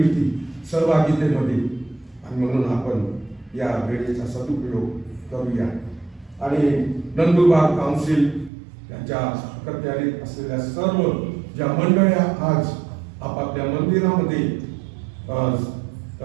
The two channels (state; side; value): drops out; left; at 8.5 s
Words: सहभागितेमध्ये, आणि म्हणून आपण या वेळेचा सदुपयोग करूया. आणि नंदुरबार काउन्सिल यांच्या अखत्यारीत असलेल्या सर्व ज्या मंडळ्या आज आपापल्या मंदिरामध्ये